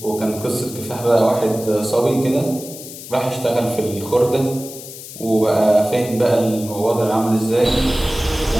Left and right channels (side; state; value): left; noise; hiss, 13 dB below the sound